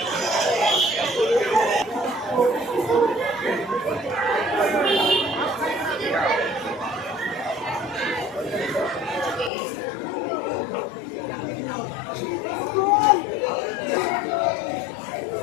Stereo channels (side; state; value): right; drops out; at 9.5 s